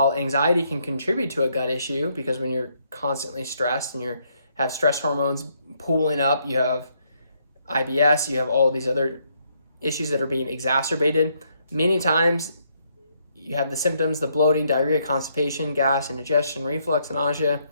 anxiety can contribute to a gut issue, because when you're constantly stressed and you have stress hormones pooling up, you have IBS, you have all of these other issues that are being exacerbated, many times you have the symptoms, the bloating, diarrhea, constipation, gas, indigestion, reflux, nausea.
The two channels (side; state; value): both; inverted; correlation -0.73